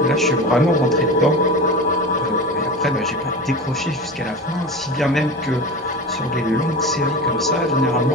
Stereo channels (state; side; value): normal; both; correlation 0.29